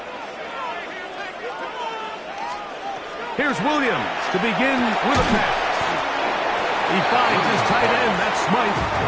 Here's Williams to begin with a pass. He finds his tight end, that's Smythe.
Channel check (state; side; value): identical; both; correlation 1.00